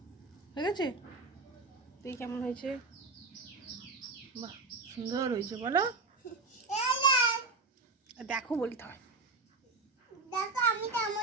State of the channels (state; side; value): quieter; left; 3.7 dB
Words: হয়ে গেছে। তুই কেমন হয়েছে? বাহ, সুন্দর হয়েছে, বলো। দেখো বলতে হয়। দেখো আমি